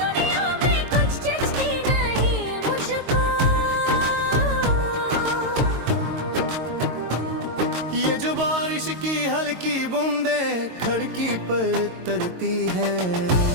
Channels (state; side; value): late; left; 22 ms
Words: दुनिया में कुछ जचती नहीं मुझको। ये जो बारिश की हल्की बूंदे खिड़की पर तरती है